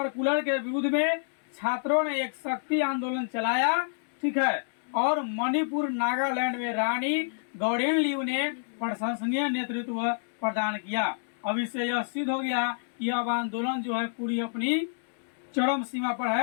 के विरुद्ध में छात्रों ने एक शक्ति आंदोलन चलाया, ठीक है। और मणिपुर नागालैंड में रानी गौरेनलियू ने प्रशंसनीय नेतृत्व प्रदान किया। अब इससे यह सिद्ध हो गया कि अब आंदोलन जो है पूरी अपनी चरम सीमा पर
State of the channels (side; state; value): right; silent; digital silence